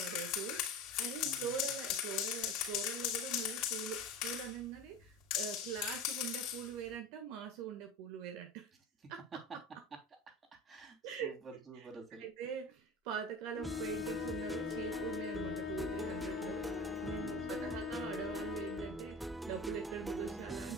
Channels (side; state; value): both; normal; correlation 0.33